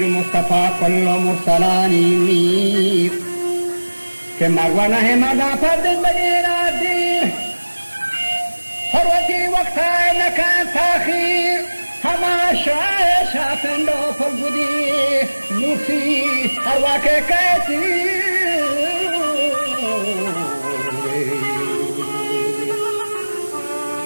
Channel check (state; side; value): inverted; both; correlation -1.00